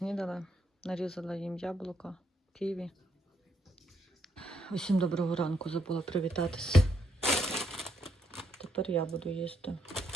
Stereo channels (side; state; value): both; normal; correlation 0.76